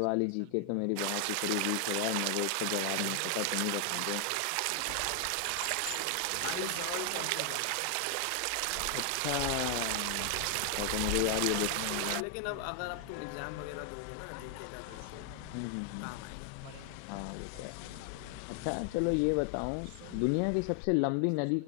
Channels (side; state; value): both; different; correlation 0.00